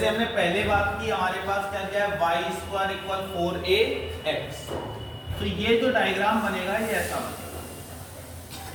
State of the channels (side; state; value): both; identical; correlation 1.00